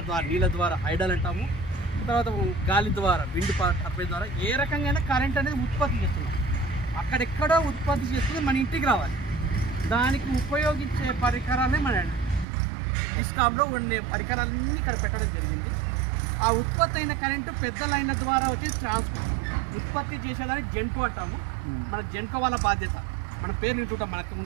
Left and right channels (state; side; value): drops out; left; at 12.5 s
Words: ద్వారా నీళ్ళ ద్వారా హైడల్ అంటాము, తర్వాత గాలి ద్వారా విండ్ టర్బైన్ ద్వారా ఏ రకంగా కరెంట్ అనేది ఉత్పత్తి చేస్తున్నాం. అక్కడెక్కడో ఉత్పత్తి చేస్తుంది మన ఇంటికి రావాలి. దానికి ఉపయోగించే పరికరాలే మన డిస్కామ్లో ఉండే పరికరాలన్నీ ఇక్కడ పెట్టడం జరిగింది. ఆ ఉత్పత్తి అయిన కరెంటు పెద్ద లైన్ల ద్వారా వచ్చేసి ట్రాన్స్పోర్ట్ ఉత్పత్తి చేసేదాన్ని జెన్కో అంటాము. మన జెన్కో వాళ్ళ బాధ్యత, మన పేరు వింటుంటాం. మనకు